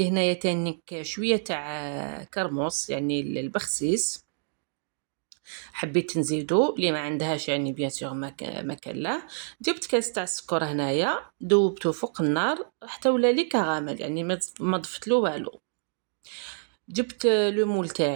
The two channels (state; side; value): silent; left; digital silence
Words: هنايا تانيك شويه تاع كرموس يعني البخسيس، حبيت نزيدو اللي ما عندهاش يعني بيان سور ما كان لا. جبت كاس تاع السكر هنايا ذوبته فوق النار حتى ولا لي كراميل، يعني ما ضفت له والو. جبت لو مول